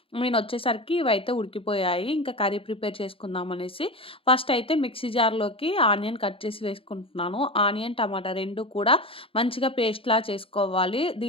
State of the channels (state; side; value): late; right; 0.27 ms